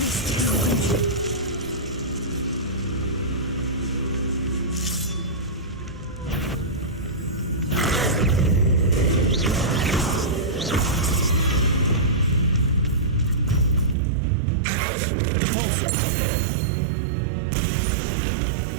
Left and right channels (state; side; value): drops out; left; at 14.0 s